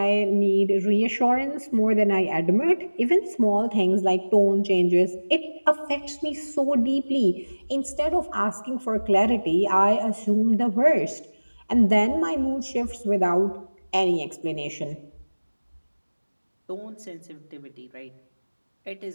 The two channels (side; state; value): both; inverted; correlation -1.00